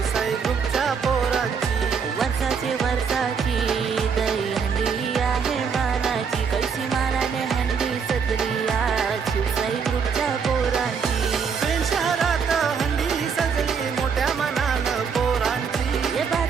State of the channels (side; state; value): left; quieter; 6.2 dB